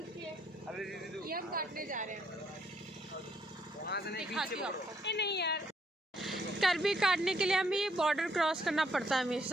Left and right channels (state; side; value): normal; both; correlation 0.71